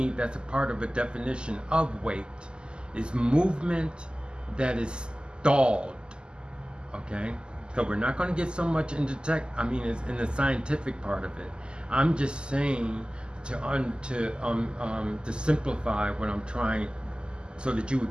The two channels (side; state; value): left; late; 0.048 ms